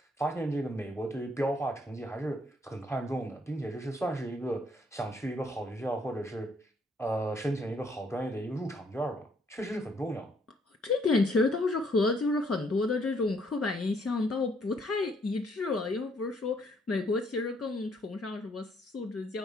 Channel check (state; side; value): normal; both; correlation 0.68